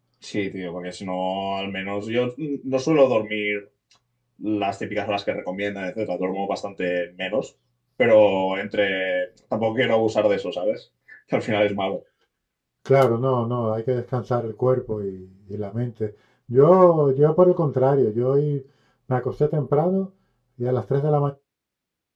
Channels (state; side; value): identical; both; correlation 1.00